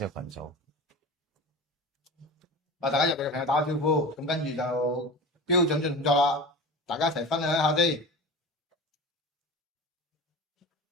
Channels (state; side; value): normal; both; correlation 0.31